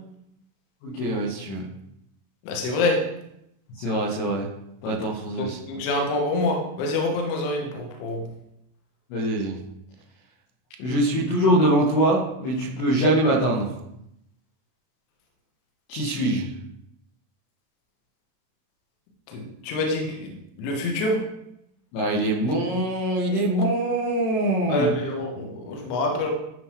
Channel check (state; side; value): late; right; 31 ms